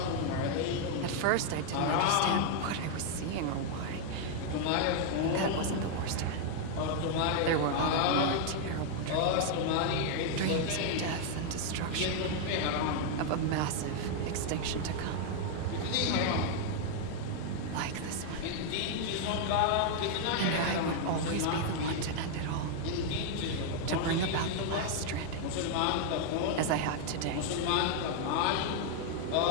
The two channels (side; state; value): both; different; correlation 0.00